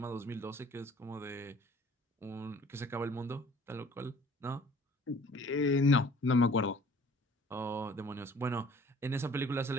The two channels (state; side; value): normal; both; correlation 0.52